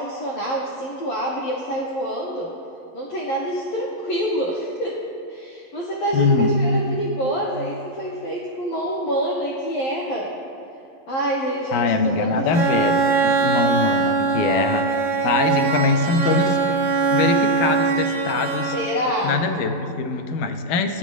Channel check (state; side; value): late; right; 11 ms